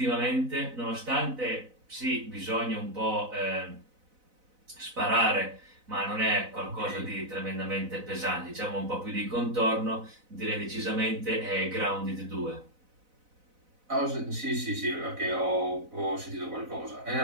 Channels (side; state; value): left; late; 4.0 ms